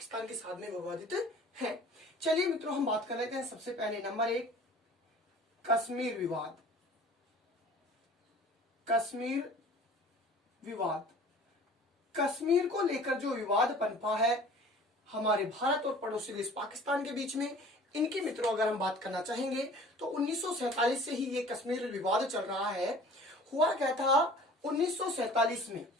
के साथ में विवादित हैं। चलिए मित्रों, हम बात कर लेते हैं। सबसे पहले नंबर एक, कश्मीर विवाद। कश्मीर विवाद, कश्मीर को लेकर जो विवाद पनपा है हमारे भारत और पड़ोसी देश पाकिस्तान के बीच में, इनकी मित्रों अगर हम बात करना चाहेंगे तो 1947 से ही ये कश्मीर विवाद चल रहा है। हुआ क्या था 1947 में,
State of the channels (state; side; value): normal; both; correlation 0.46